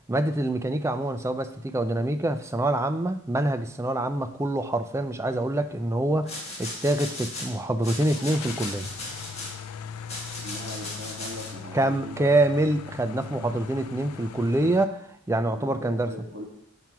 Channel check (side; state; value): both; normal; correlation 0.75